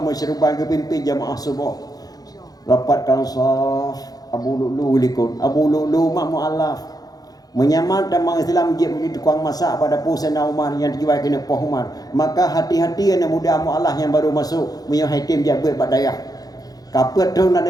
gepimpin jamaah subuh. Rapat kansaf Abu Lu'lu likun. Abu Lu'lu mak mualaf. Menyamar tamang Islam je menjadi tukang masak pada Sayyidina Umar yang diwai kena Poh Umar. Maka hati-hati anak muda mualaf yang baru masuk menyang haitim jabat badayah. Kapet tu nak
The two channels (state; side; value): late; right; 0.18 ms